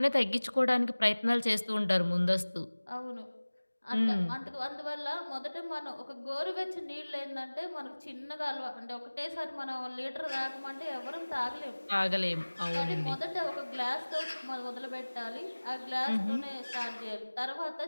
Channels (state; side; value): inverted; both; correlation -1.00